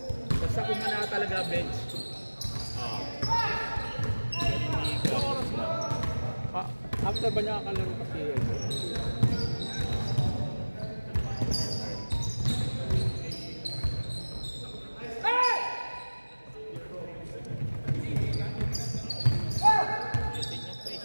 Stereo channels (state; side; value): inverted; both; correlation -1.00